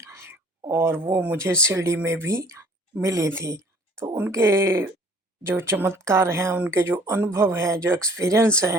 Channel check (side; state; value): both; normal; correlation 0.54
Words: और वो मुझे शिरडी में भी मिली थी। तो उनके जो चमत्कार हैं, उनके जो अनुभव हैं, जो एक्सपीरियंस